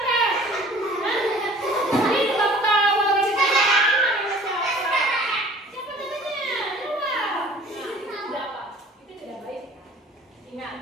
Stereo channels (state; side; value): normal; both; correlation 0.49